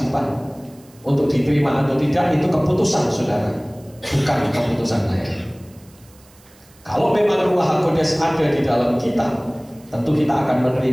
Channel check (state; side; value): noise; right; hiss, 28 dB below the sound